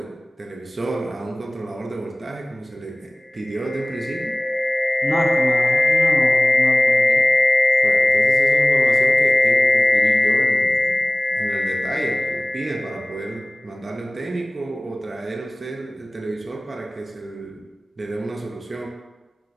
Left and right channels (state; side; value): normal; both; correlation 0.97